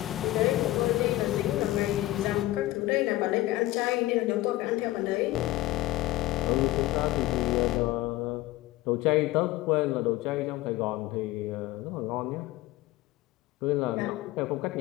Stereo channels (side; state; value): right; quieter; 16.8 dB